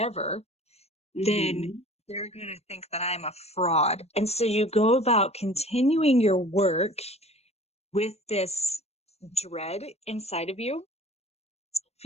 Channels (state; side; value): late; right; 0.31 ms